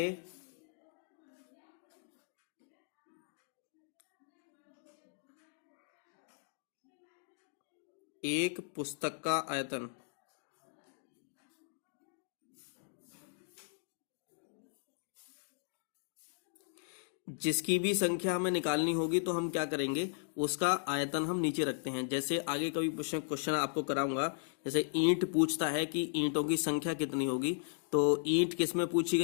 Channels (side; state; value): right; silent; digital silence